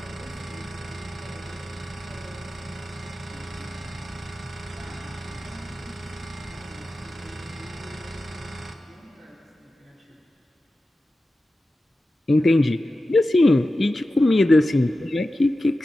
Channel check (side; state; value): both; normal; correlation 0.93